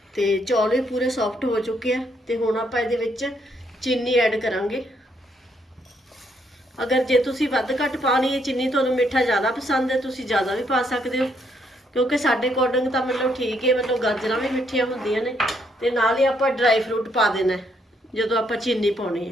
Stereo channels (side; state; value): both; normal; correlation 0.72